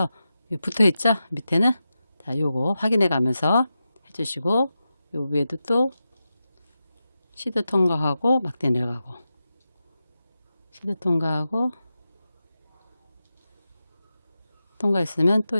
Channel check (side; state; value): both; inverted; correlation -0.91